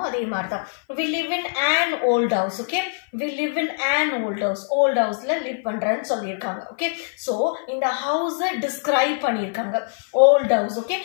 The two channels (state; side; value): silent; right; 56 dB below the other